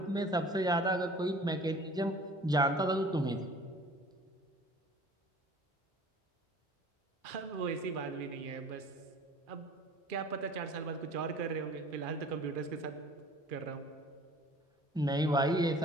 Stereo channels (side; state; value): both; normal; correlation 0.47